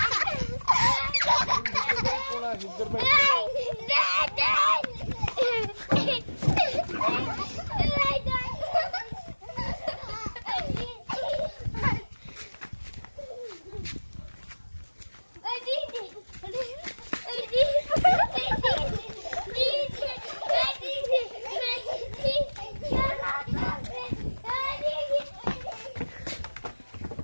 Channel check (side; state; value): both; inverted; correlation -1.00